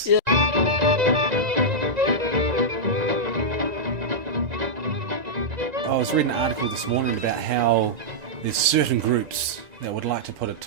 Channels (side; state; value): left; late; 1.9 ms